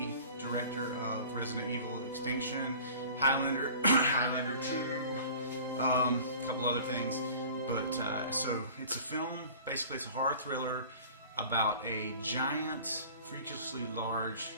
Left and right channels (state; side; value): inverted; both; correlation -0.44